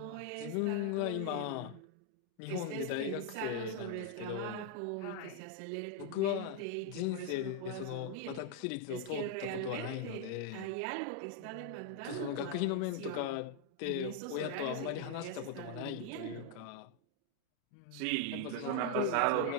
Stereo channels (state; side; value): different; both; correlation 0.00